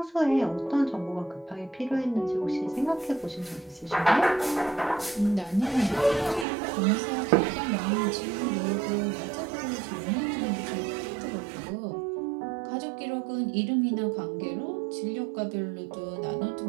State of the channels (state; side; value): drops out; left; at 6.5 s